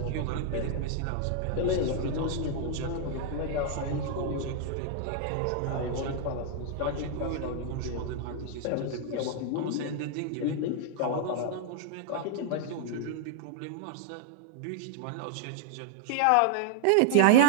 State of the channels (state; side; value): different; both; correlation -0.01